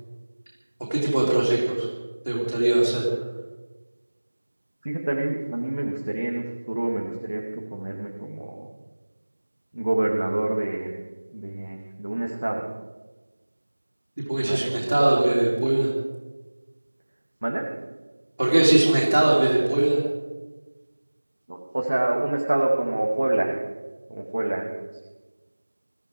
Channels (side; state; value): both; inverted; correlation -1.00